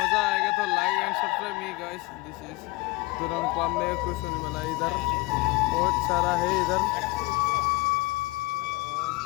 आएगा तो like and subscribe me guys. This is दुरंग पामे कुछ होने वाला इधर बहुत सारा है इधर है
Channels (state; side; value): quieter; right; 23.5 dB